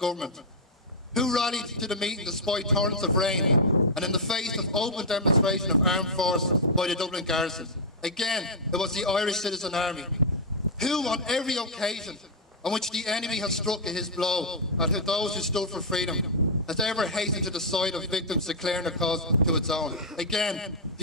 who rallied to the meeting despite torrents of rain and in the face of open demonstration of armed force by the Dublin garrison. Again, it was the Irish Citizen Army, who on every occasion on which the enemy has struck his blow at those who stood for freedom, has ever hastened to the side of victims declaring their cause to its own. Again,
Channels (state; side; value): normal; both; correlation -0.04